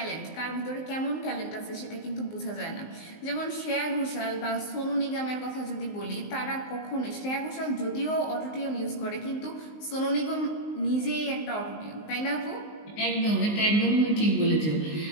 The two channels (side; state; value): right; late; 19 ms